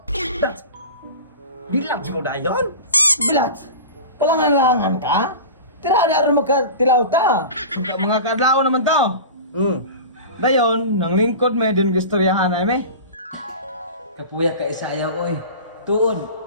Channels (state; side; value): inverted; both; correlation -0.34